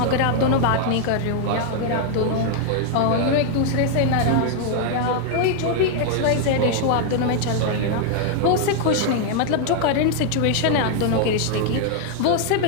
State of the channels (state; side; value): different; both; correlation 0.00